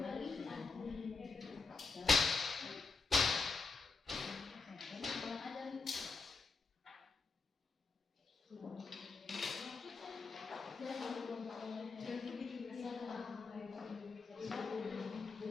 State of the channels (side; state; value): right; quieter; 4.3 dB